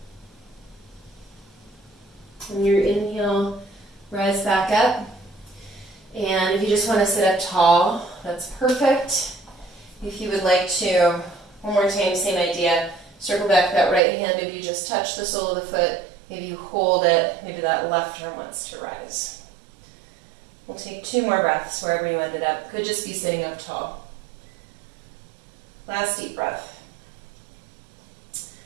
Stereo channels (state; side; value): drops out; left; at 14.0 s